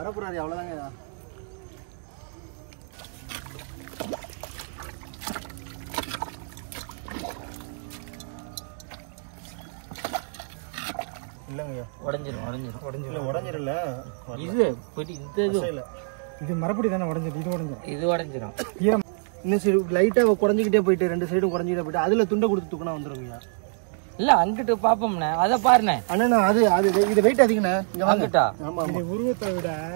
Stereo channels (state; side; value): silent; left; digital silence